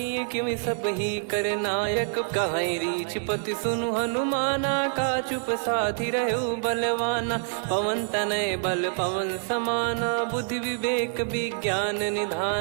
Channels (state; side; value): silent; left; 61 dB below the other